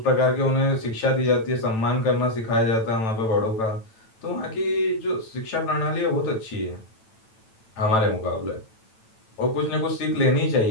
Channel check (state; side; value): late; right; 9.0 ms